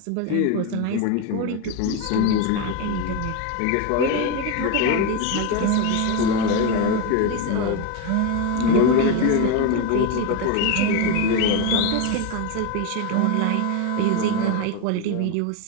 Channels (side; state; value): both; different; correlation 0.03